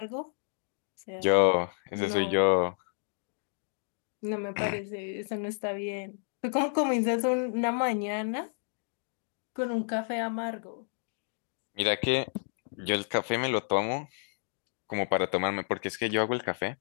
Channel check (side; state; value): right; silent; digital silence